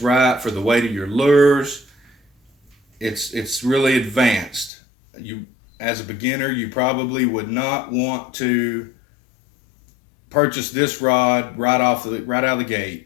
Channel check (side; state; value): right; drops out; at 4.7 s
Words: right for the weight of your lures. It's really advanced. You, as a beginner, you probably would not want to purchase this rod right out of the gate.